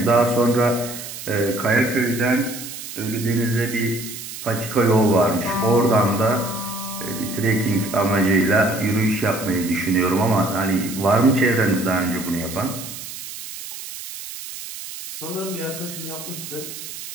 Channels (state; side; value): noise; right; hiss, 10 dB below the sound